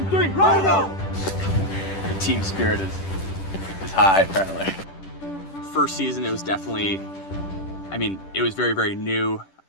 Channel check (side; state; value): right; late; 10 ms